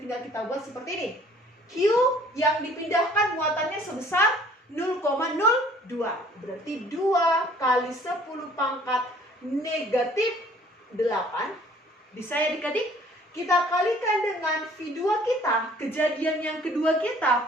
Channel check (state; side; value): normal; both; correlation 0.55